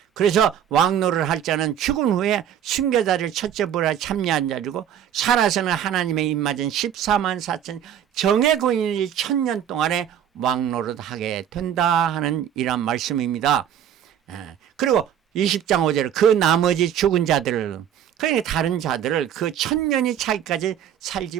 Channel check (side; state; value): left; quieter; 9.7 dB